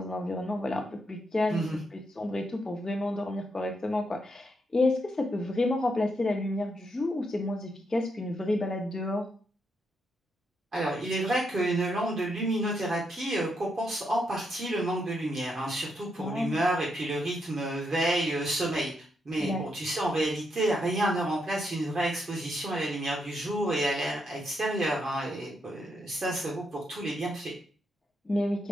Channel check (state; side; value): normal; both; correlation 0.80